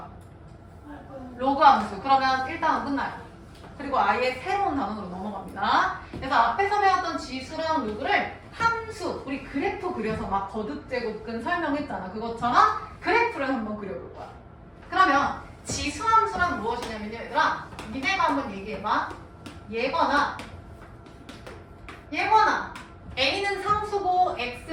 로그 함수. 그러면 1단원 끝나요. 그리고 아예 새로운 단원으로 넘어갑니다. 그래서 앞에서 배웠던 지수랑 로그를 함수, 우리 그래프 그려서 막 거듭 제곱근 설명했잖아. 그것처럼 그래프를 한번 그려볼 거야. 그러면 지수 함수란 무엇이냐면요, 얘들아. 니네가 한번 얘기해봐. 얘거나 A는 상수고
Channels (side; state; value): both; identical; correlation 1.00